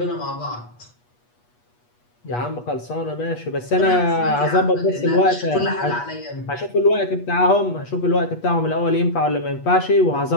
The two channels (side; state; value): right; late; 8.3 ms